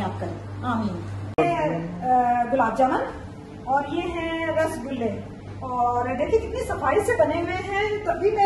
करे, आमीन। गुलाब जामुन और ये है रसगुल्ले, और देखिए कितनी सफाई से बने हुए हैं। तभी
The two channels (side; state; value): both; identical; correlation 1.00